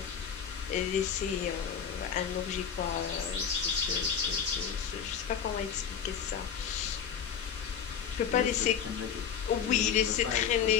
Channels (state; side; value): quieter; right; 7.8 dB